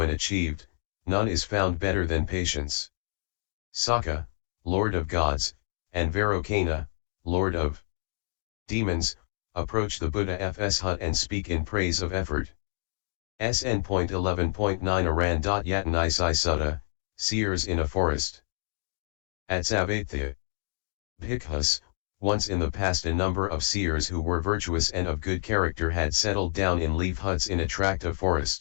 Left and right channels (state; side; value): silent; right; digital silence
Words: achieved, none is found better than patience. Sakka, lord of gods, and Vairocana, lord of demons, approach the Buddha's hut and speak in praise of effort. SN.11.1-SN.11.10 Seers in a forest. As-yet-unattained. Bhikkhus, once in the past a number of seers who were virtuous and of good character had settled down in leaf huts in a tract of